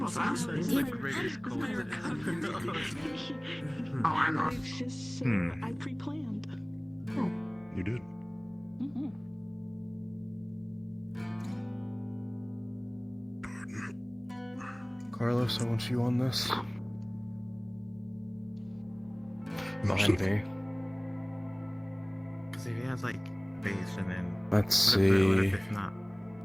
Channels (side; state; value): left; noise; hum, 24 dB below the sound